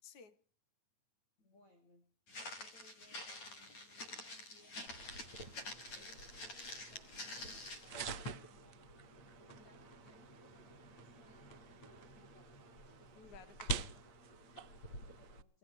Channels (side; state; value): right; late; 9.2 ms